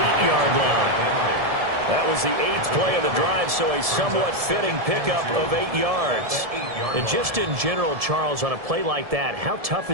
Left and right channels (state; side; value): late; left; 1.7 ms